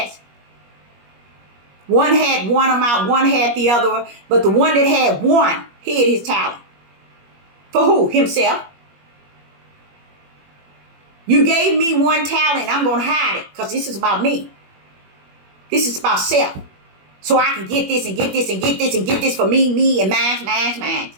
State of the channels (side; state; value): left; late; 21 ms